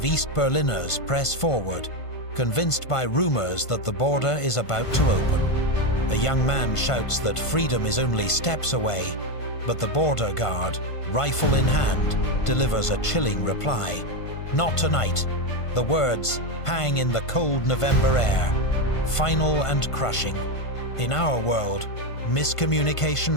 East Berliners press forward, convinced by rumors that the border is about to open. A young man shouts that freedom is only steps away, but the border guard, rifle in hand, delivers a chilling reply. Not tonight. The words hang in the cold November air, final and crushing. In our world,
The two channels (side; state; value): right; late; 1.5 ms